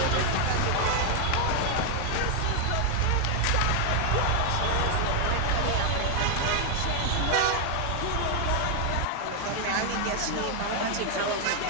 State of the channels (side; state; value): both; different; correlation 0.00